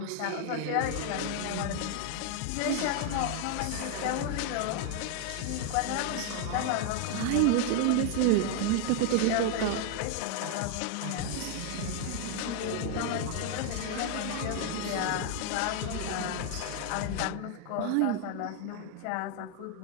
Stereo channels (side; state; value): both; different; correlation 0.00